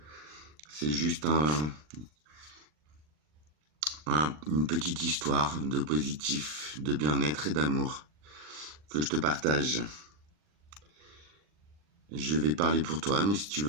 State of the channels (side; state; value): left; late; 39 ms